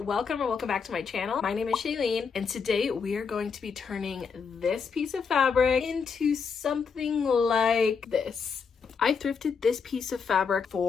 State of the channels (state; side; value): quieter; right; 5.8 dB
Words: welcome or welcome back to my channel. My name is Shein, and today we are going to be turning this piece of fabric into something like this. I thrifted this piece of fabric